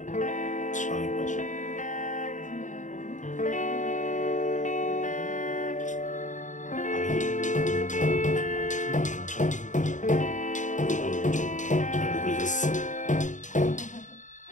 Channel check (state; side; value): late; right; 0.36 ms